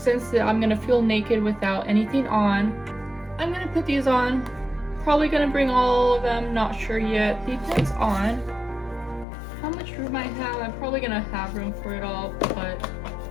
I'm gonna feel naked without anything on, I'm gonna put these on. Probably gonna bring all of them, not sure yet. Depends on how much room I have. I'm probably gonna have room for it all, but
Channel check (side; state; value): right; drops out; at 9.2 s